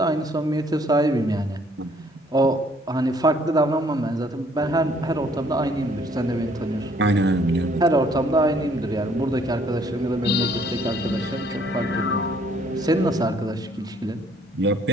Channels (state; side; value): normal; both; correlation 0.63